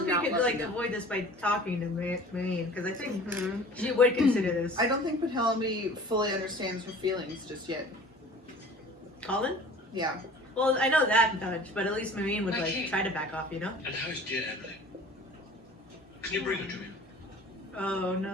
not could love like you? avoid this by talking to Marine, because I think Mhm. she would consider this. I don't think Penelope fully understands her feelings just yet. Colin? Yeah. Well, I know that much, but at least Marine would Okay. like try to back off, you know? And how is dear Emily? Can you bring her to me? Oh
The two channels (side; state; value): both; normal; correlation 0.45